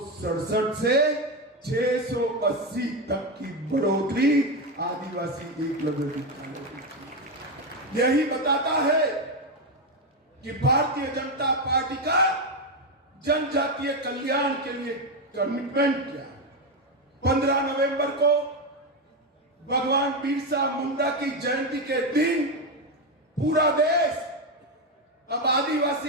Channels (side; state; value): both; normal; correlation 0.10